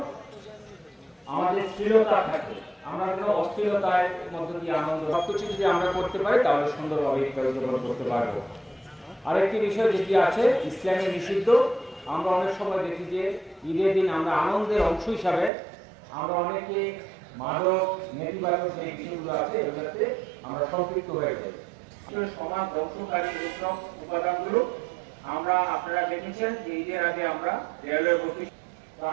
আমাদের স্থিরতা থাকে, আমরা যেন অস্থিরতার মধ্যে দিয়ে আনন্দ সবকিছু যদি আমরা করতে পারি তাহলে সুন্দরভাবে উদযাপন করতে পারবো। আরেকটি বিষয় যেটি আছে ইসলামে নিষিদ্ধ, আমরা অনেক সময় দেখি যে ঈদের দিন আমরা আনন্দের অংশ হিসাবে আমরা অনেকে মাদক নেতিবাচক যে বিষয়গুলো আছে এগুলোতে আমরা সম্পৃক্ত হয়ে যাই। সমাজ ধ্বংসকারী এইসব উপাদানগুলো আমরা আপনারা দেখেছেন যে ঈদের আগে আমরা রেলওয়ে অফিস, তো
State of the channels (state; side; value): drops out; left; at 15.5 s